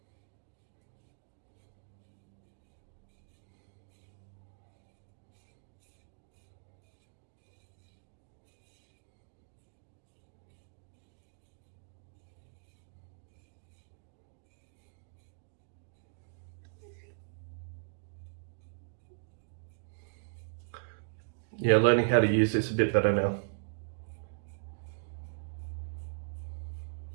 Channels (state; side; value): silent; left; digital silence